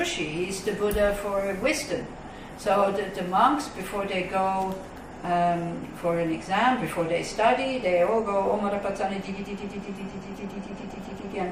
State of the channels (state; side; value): identical; both; correlation 1.00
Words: he's the Buddha for wisdom. So the monks, before they go for an exam, before they study, they all go Om Arapatani